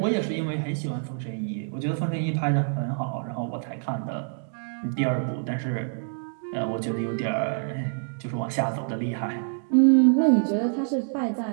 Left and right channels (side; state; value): left; silent; digital silence